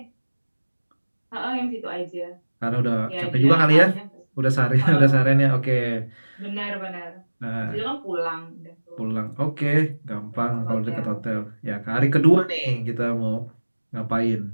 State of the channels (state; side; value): inverted; both; correlation -1.00